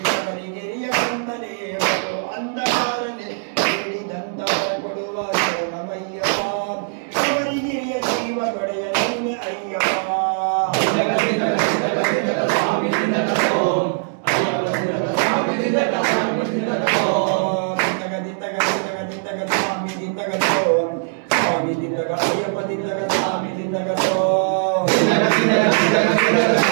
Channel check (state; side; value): silent; left; digital silence